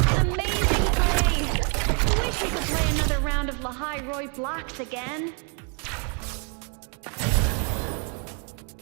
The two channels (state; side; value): quieter; left; 36.2 dB